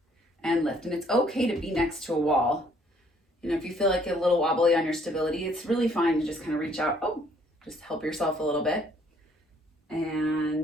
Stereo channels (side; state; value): both; normal; correlation 0.63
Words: and lift. And it's okay to be next to a wall. You know, if you feel like you're a little wobbly on your stability, it's really fine to just kind of reach out. Oh, just help yourself a little bit.